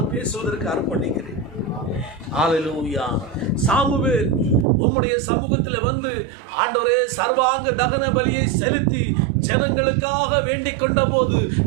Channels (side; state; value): left; drops out; at 4.7 s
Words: பேசுவதற்கு அர்ப்பணிக்கிறேன். ஹல்லேலூயா. சாமுவேல் உம்முடைய சமூகத்தில் வந்து ஆண்டவரே சர்வாங்க தகன பலியை செலுத்தி ஜனங்களுக்காக வேண்டிக் கொண்ட போது